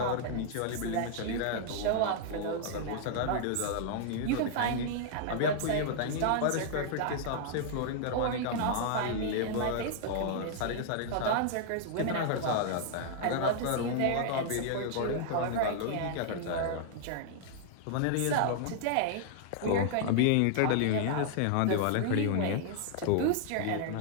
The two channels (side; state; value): both; different; correlation -0.01